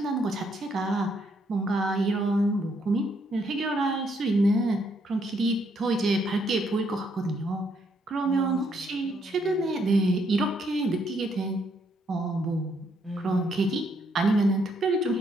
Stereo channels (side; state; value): both; normal; correlation 0.73